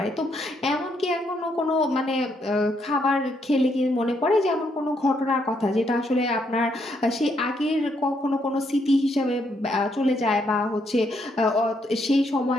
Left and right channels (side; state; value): both; normal; correlation 0.75